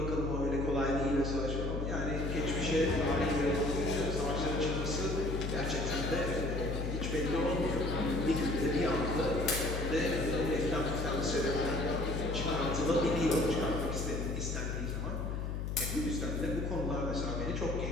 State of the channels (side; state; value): left; noise; hum, 2 dB below the sound